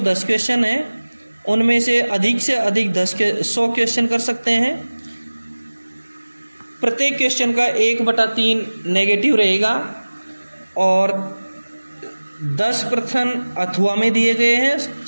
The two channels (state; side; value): inverted; both; correlation -1.00